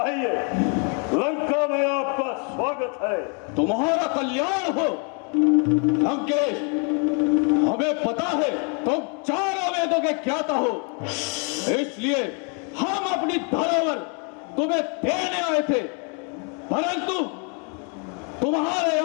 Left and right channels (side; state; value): right; quieter; 37.5 dB